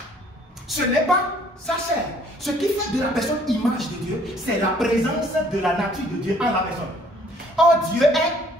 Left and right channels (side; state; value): both; normal; correlation 0.60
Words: ce n'est pas sa chair. Ce qui fait de la personne image de Dieu, c'est la présence de la nature de Dieu en la personne. Or, Dieu